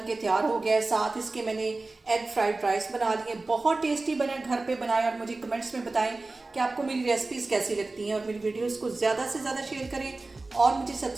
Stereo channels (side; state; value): left; quieter; 3.3 dB